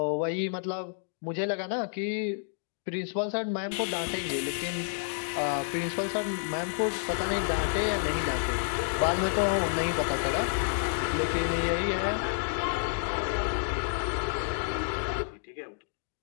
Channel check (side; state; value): right; silent; digital silence